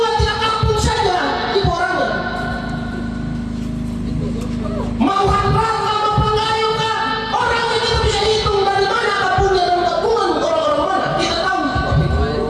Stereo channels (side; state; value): both; identical; correlation 1.00